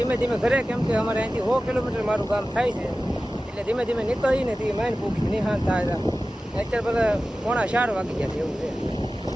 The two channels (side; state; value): both; normal; correlation 0.95